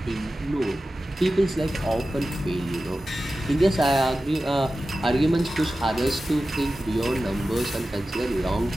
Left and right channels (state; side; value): normal; both; correlation 0.94